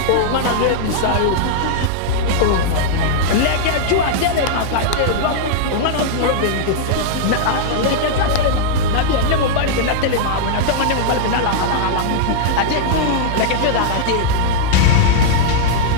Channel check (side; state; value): both; different; correlation -0.01